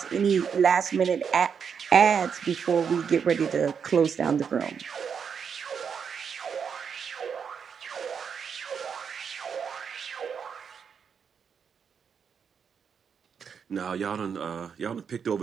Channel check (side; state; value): left; quieter; 6.8 dB